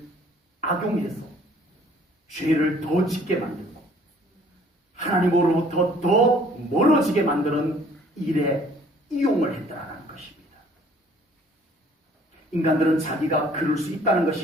악용해서 죄를 더 짓게 만들고 하나님으로부터 더 멀어지게 만드는 일에 이용을 했다는 것입니다. 인간들은 자기가 그럴 수 있다는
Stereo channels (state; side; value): normal; both; correlation 0.57